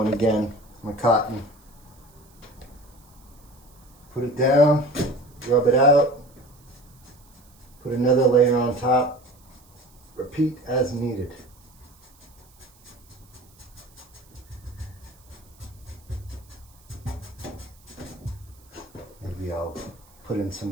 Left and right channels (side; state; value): right; noise; hiss, 28 dB below the sound